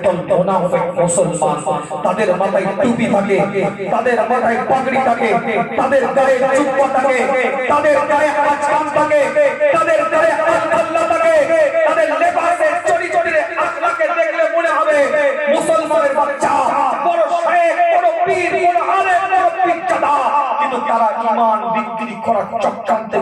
মুনাফিক মুসলমান। তাদের মাথায় টুপি থাকে, তাদের মাথায় পাগড়ি থাকে, তাদের গায়ে জুব্বা থাকে, তাদের গায়ে আজকান থাকে, তাদের গায়ে আল্লাহ থাকে, তাদের লেবাসের চড়ি চড়িরে আখলাকে দেখলে মনে হবে মুসলমানের বাচ্চা, বড় শেখ, বড় পীর, বড় আলেম, বড় পিচ্চাদা। কিন্তু তারা ঈমান বিক্রি করার চক্রান্তে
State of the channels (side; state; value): both; identical; correlation 1.00